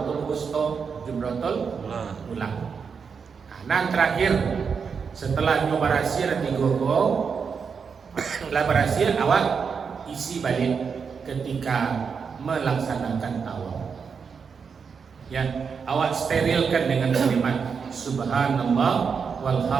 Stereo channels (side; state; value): left; quieter; 6.0 dB